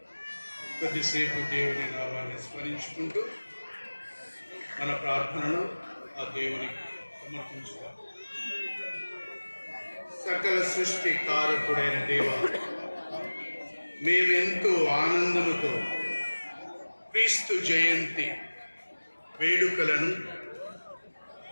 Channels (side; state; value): both; inverted; correlation -1.00